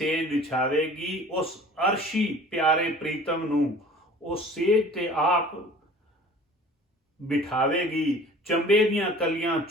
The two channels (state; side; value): normal; both; correlation 0.46